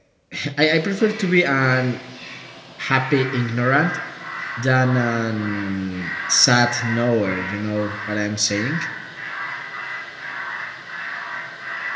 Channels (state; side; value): identical; both; correlation 1.00